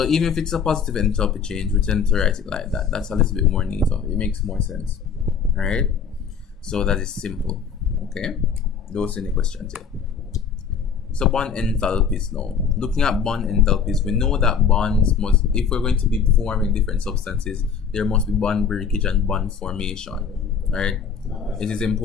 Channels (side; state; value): right; quieter; 6.5 dB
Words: even if it's a positive enthalpy change, we tend to write it like that. That's a little bit more neater. It makes more sense. All right. So that is simple. Okay. Those are any questions here. So bond enthalpies now. Looking at bond enthalpies, we know that bonds must, if we're going to be forming different substances, there must be bond breakage and bond formation, right? It is